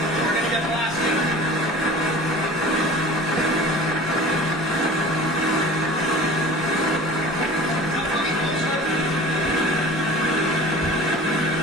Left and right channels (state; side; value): normal; both; correlation 0.41